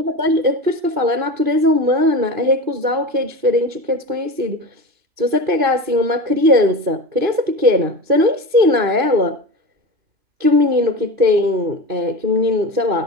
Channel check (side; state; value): left; late; 2.5 ms